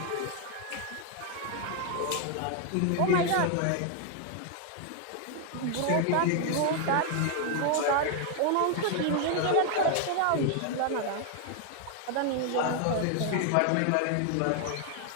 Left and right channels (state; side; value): different; both; correlation 0.00